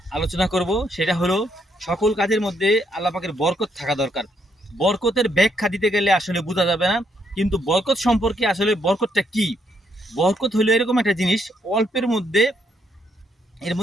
আলোচনা করব। সেটা হলো, সকল কাজের মধ্যে আল্লাহ পাকের বরকত থাকা দরকার। বরকতের ব্যাখ্যা দিতে গেলে আসলে বোঝা যাবে না, কিন্তু বরকত সম্পর্কে আসলে বরকতটা কি। বরকত হলো এরকম একটা জিনিস, অল্পের মধ্যে এর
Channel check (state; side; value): normal; both; correlation 0.74